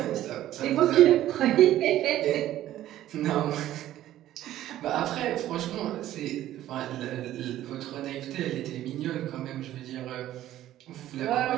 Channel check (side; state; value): left; quieter; 13.3 dB